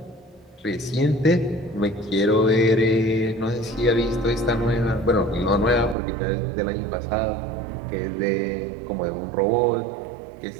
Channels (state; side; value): drops out; left; at 6.0 s